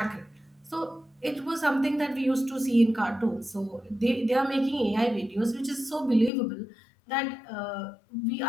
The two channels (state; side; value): drops out; right; at 6.3 s